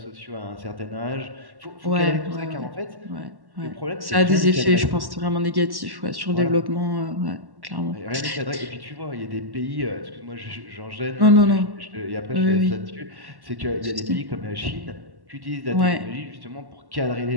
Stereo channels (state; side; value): late; left; 1.1 ms